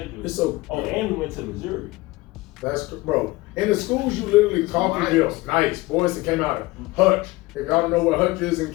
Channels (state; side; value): quieter; right; 20.7 dB